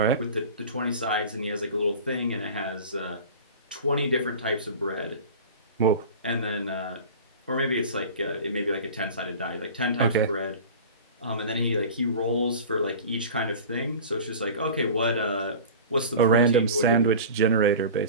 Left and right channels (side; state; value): both; inverted; correlation -0.36